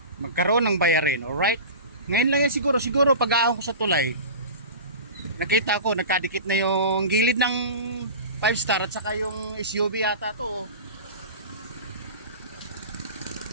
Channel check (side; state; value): both; inverted; correlation -0.32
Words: Magkaroon ng bayarin, alright? Ngayon lang yan siguro pag-ahon ko sa tulay. Nakita ko nagkadikit na yung gilid ng 5 star at saka yung SUV yata to.